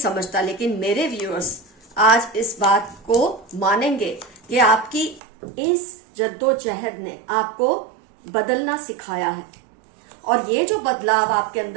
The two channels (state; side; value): drops out; left; at 5.2 s